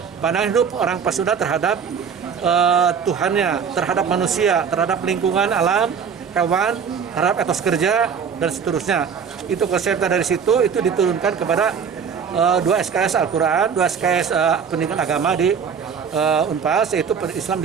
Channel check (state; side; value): quieter; left; 6.7 dB